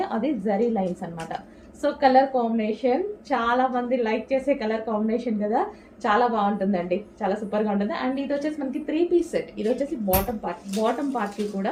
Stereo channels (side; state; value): both; identical; correlation 1.00